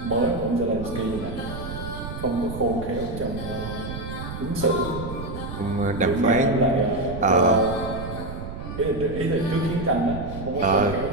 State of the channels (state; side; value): noise; right; rumble, 8 dB below the sound